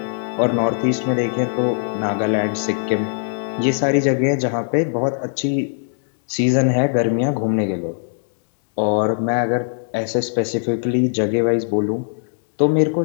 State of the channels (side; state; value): right; silent; digital silence